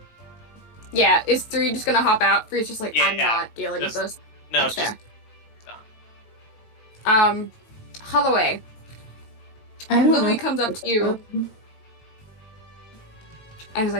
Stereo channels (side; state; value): right; late; 18 ms